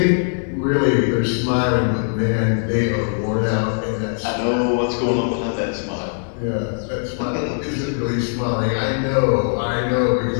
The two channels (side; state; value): right; silent; digital silence